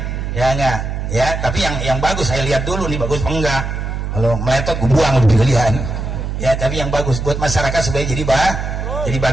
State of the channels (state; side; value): noise; right; hum, 4 dB below the sound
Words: Ya enggak, ya, tapi yang bagus saya lihat dulu nih, bagus apa enggak. Kalau meletot gue buang lebih kalian. Ya, tapi yang bagus buat masyarakat supaya jadi